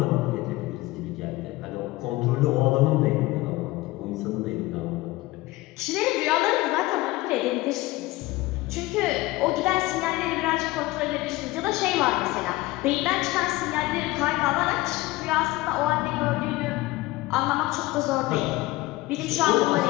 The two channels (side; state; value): right; quieter; 19.4 dB